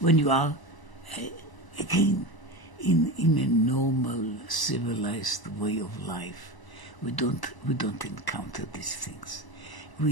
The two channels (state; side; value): late; right; 1.0 ms